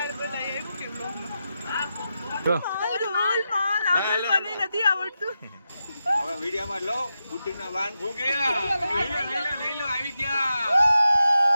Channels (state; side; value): inverted; both; correlation -0.89